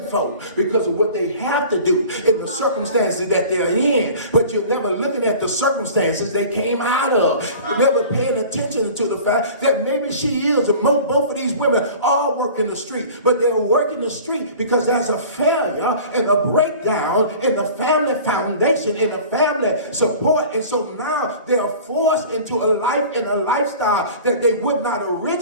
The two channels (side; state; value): both; inverted; correlation -0.42